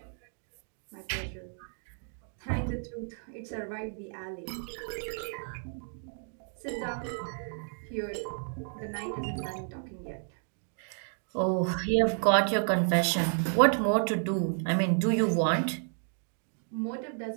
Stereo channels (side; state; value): left; silent; 57 dB below the other